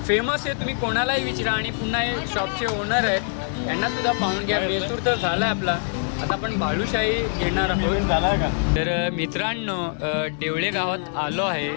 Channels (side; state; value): right; silent; digital silence